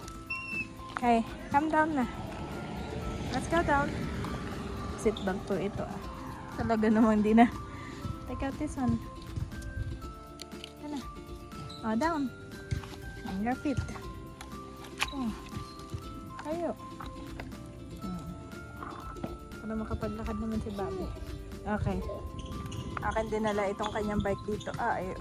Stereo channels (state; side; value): identical; both; correlation 1.00